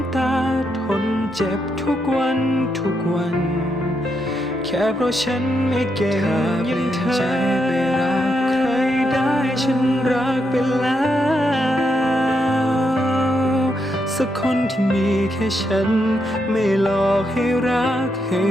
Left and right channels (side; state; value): both; normal; correlation 0.81